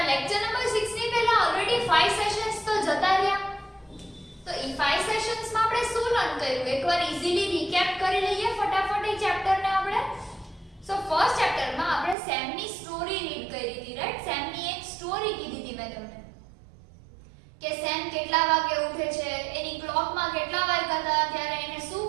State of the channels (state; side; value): drops out; left; at 12.2 s